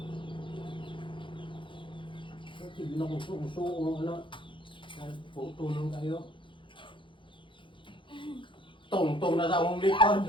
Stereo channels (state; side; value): late; right; 0.24 ms